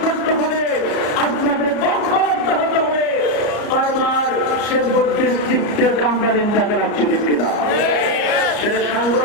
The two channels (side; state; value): right; late; 34 ms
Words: করতে হবে, আপনাদের ঐক্যবদ্ধ হতে হবে। বারবার সে ডিস্ট্রিক্টের কামরালিন টাকা রাখছে। ঠিক কিনা? সেটা